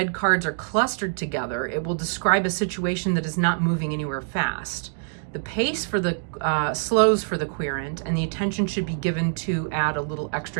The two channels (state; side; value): silent; left; digital silence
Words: cards are clustered together, it will describe a situation that is not moving anywhere fast. The pace for the slows for the querent, and the attention should be given to add a little